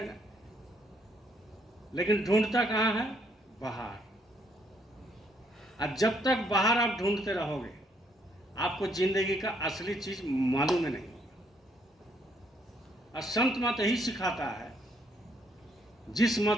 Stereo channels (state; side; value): normal; both; correlation 0.70